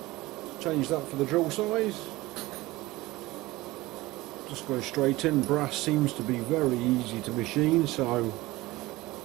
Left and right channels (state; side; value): quieter; left; 19.4 dB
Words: Change that for the drill size. Just going straight in. Brass seems to be very easy to machine, so